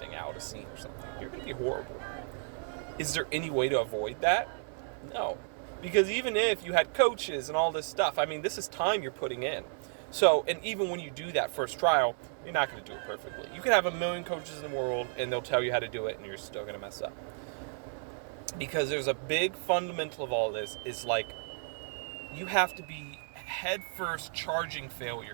out a scene or something. You're going to be horrible. Is there any way to avoid that? No. Because even if you had coaches and all this stuff, I mean, this is time you're putting in. So, and even when you do that first trial, you're not going to do it perfectly. You can have a million coaches in the world, and they'll tell you how to do it, and you're still going to mess up. Because there's a big fundamental of all this is like you have to be head first charging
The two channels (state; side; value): silent; left; 56 dB below the other